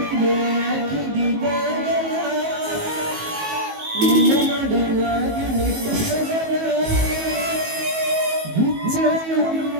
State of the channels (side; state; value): left; late; 19 ms